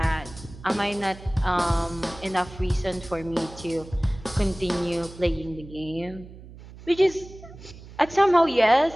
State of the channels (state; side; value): noise; right; hum, 17 dB below the sound